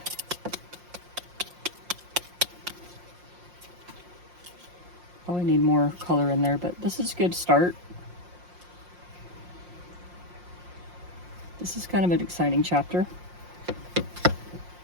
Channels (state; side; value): late; left; 5.6 ms